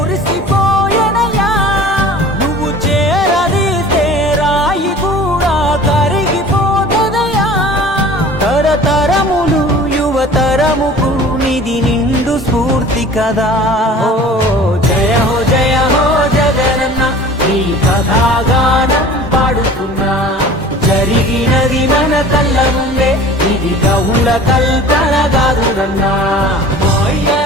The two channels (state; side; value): normal; both; correlation 0.43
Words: నువ్వు చేరదీస్తే రాయి కూడా కరిగిపోతదయ్యా తరతరములు యువతరముకు నిధి నిండు స్ఫూర్తి కదా ఓ జయ హో జగనన్న నీ కథాగానం పాడుతున్నా జరిగినది మన కళ్ళ ముందే ఇది గౌల కల్పన కాదురన్నా మా అయ్య